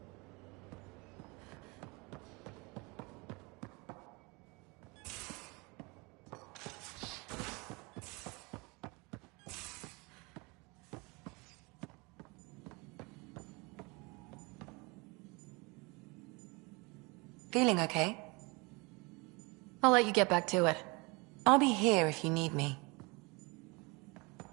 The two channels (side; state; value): left; quieter; 27.3 dB